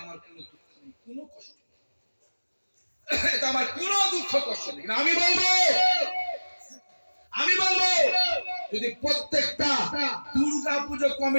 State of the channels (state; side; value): inverted; both; correlation -1.00